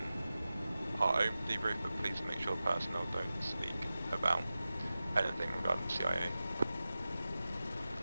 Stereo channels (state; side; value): inverted; both; correlation -0.95